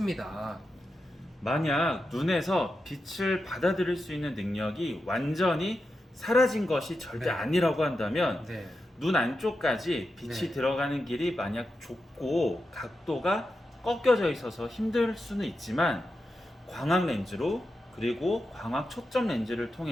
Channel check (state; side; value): normal; both; correlation 0.89